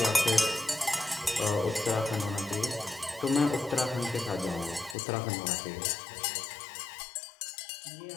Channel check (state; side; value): drops out; right; at 5.0 s